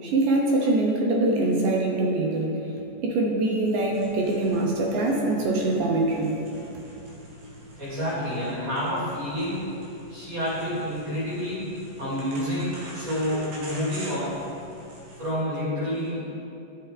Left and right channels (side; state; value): left; late; 14 ms